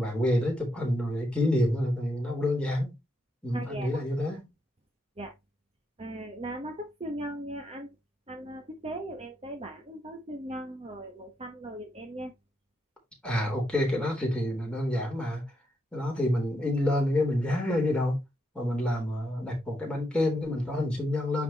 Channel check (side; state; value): both; normal; correlation 0.80